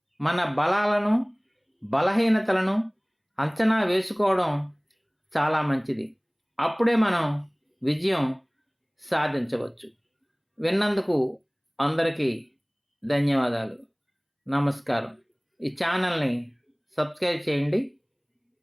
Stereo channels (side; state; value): both; identical; correlation 1.00